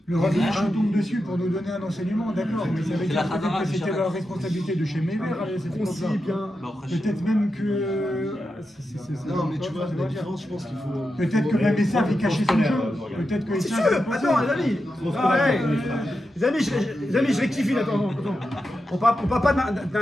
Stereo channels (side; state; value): both; normal; correlation 0.89